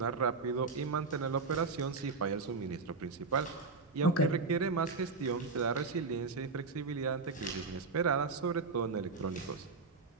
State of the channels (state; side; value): quieter; left; 4.3 dB